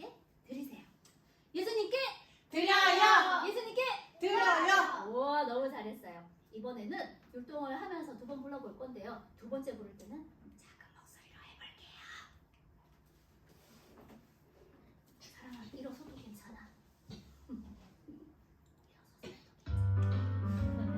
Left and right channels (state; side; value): identical; both; correlation 1.00